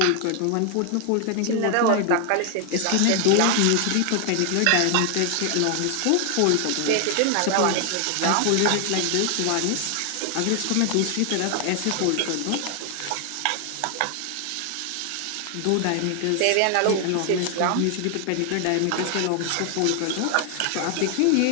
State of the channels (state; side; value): different; both; correlation 0.00